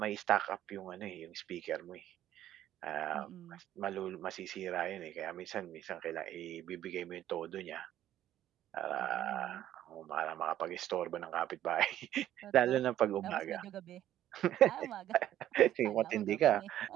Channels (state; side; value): quieter; left; 12.3 dB